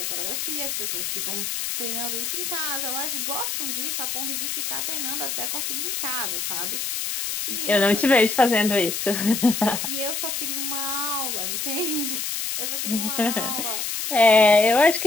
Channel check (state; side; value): noise; left; hiss, 2 dB below the sound